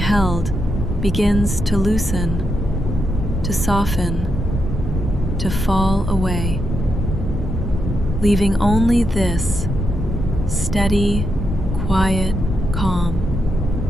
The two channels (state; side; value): normal; both; correlation 0.82